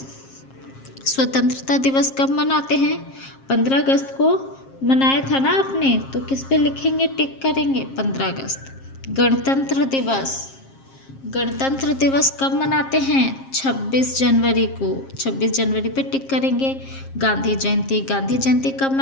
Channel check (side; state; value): right; late; 7.5 ms